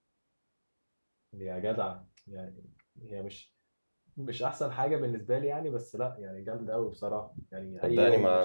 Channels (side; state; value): both; inverted; correlation -1.00